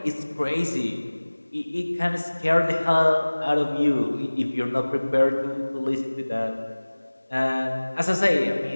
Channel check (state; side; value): inverted; both; correlation -1.00